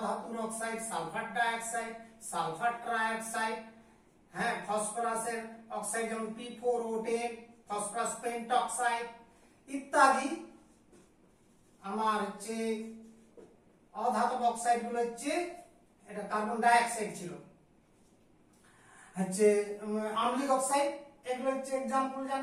ধাতুর oxide sulphur dioxide, sulphur trioxide, হ্যাঁ, ফসফরাসের অক্সাইড যেমন P4O10, ফসফরাস পেন্টঅক্সাইড ইত্যাদি। আমার হচ্ছে অধাতব অক্সাইড গুলো হচ্ছে, এটা কার্বন ডাইঅক্সাইড ছিল, হচ্ছে আম্লিক অক্সাইড, এগুলো হচ্ছে এক্সাম্পল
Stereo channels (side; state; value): both; identical; correlation 1.00